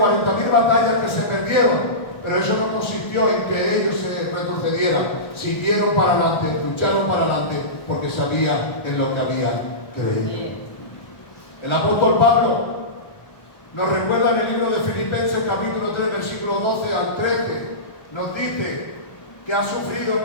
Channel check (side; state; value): right; late; 1.3 ms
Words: batallas que se perdieron, pero eso no consistió en que ellos se retrocedieran. Siguieron para adelante, lucharon para adelante, porque sabían en lo que habían creído. El apóstol Pablo nos recuerda en el libro de Filipenses capítulo 3, versículo 12 al 13. Nos dice que ha sufrido,